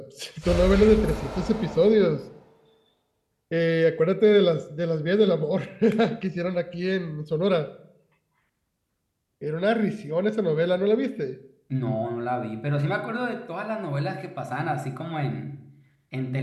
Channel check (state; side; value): identical; both; correlation 1.00